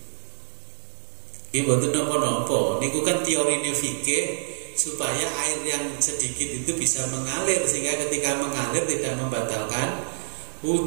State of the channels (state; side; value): silent; left; digital silence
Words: Iki mboten napa-napa. Niku kan teorine fikih supaya air yang sedikit itu bisa mengalir sehingga ketika mengalir tidak membatalkan